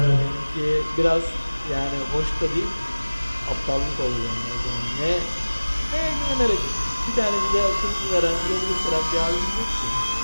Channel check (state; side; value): inverted; both; correlation -1.00